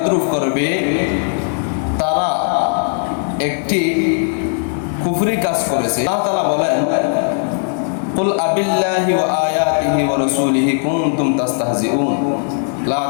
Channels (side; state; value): right; silent; 68 dB below the other